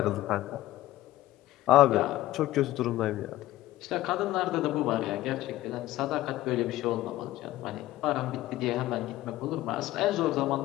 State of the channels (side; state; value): right; quieter; 15.8 dB